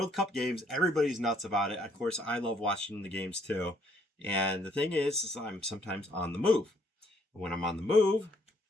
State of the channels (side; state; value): both; normal; correlation 0.67